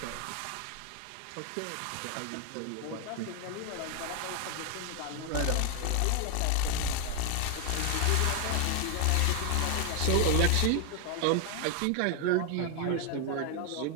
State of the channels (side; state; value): both; different; correlation 0.01